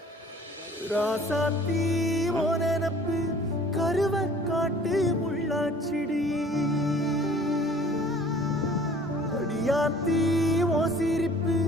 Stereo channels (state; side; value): normal; both; correlation 0.51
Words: ராசாத்தி ஓ நினப்பு கருவ காட்டு முள்ளாச்சிடி. அடியாத்தி ஓ சிரிப்பு